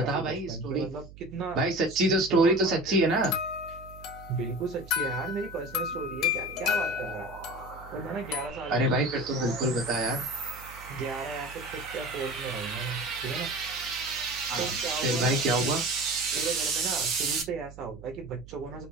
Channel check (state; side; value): noise; right; hum, 17 dB below the sound